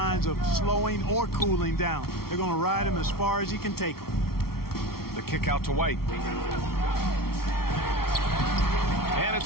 of slowing or cooling down. They're going to ride him as far as he can take him. The kick out to White. And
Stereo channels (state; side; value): late; right; 0.94 ms